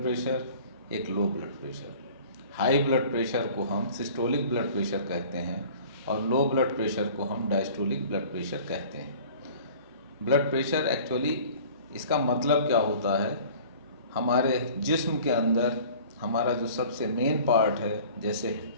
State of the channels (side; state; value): both; inverted; correlation -0.47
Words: प्रेशर, एक low blood pressure. High blood pressure को हम सिस्टोलिक ब्लड प्रेशर कहते हैं और लो ब्लड प्रेशर को हम डायस्टोलिक ब्लड प्रेशर कहते हैं। ब्लड प्रेशर एक्चुअली इसका मतलब क्या होता है? हमारे जिस्म के अंदर हमारा जो सबसे मेन पार्ट है, जैसे